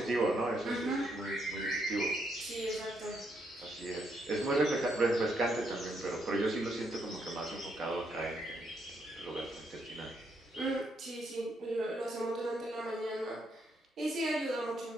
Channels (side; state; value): both; normal; correlation 0.76